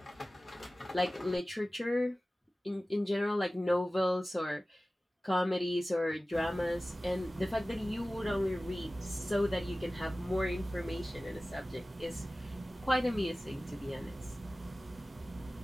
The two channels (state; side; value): normal; both; correlation 0.97